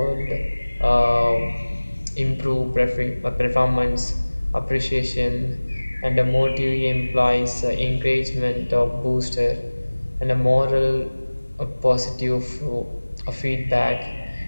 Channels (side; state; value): both; inverted; correlation -1.00